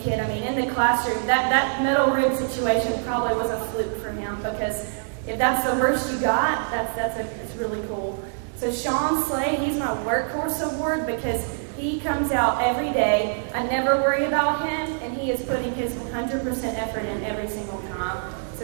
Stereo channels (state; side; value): silent; left; digital silence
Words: kid. I mean, in the classroom, that metal rib situation probably was a fluke for him because if that's the worst you got, it's really cool. So Sean Slade, he's my workhorse award because he comes out every day. I never worry about him, and he is putting his 100% effort in every single time.